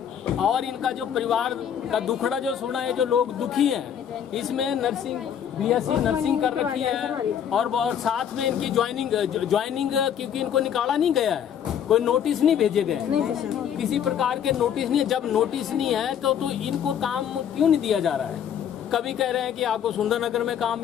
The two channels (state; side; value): quieter; right; 8.9 dB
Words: और इनका जो परिवार का दुखड़ा जो सुना है, जो लोग दुखी हैं, इसमें नर्सिंग बीएससी नर्सिंग कर रखी है और साथ में इनकी ज्वाइनिंग क्योंकि इनको निकाला नहीं गया है, कोई नोटिस नहीं भेजे गए, किसी प्रकार के नोटिस नहीं। जब नोटिस नहीं है तो इनको काम क्यों नहीं दिया जा रहा है? कभी कह रहे हैं कि आपको सुंदरनगर में काम